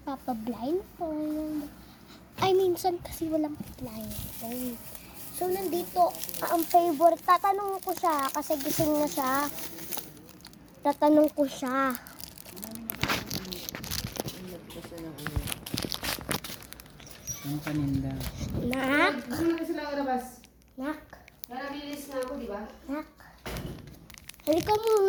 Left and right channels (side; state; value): both; identical; correlation 1.00